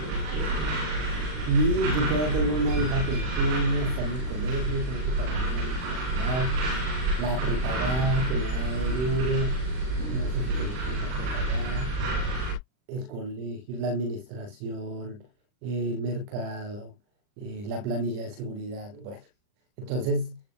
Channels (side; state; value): left; late; 39 ms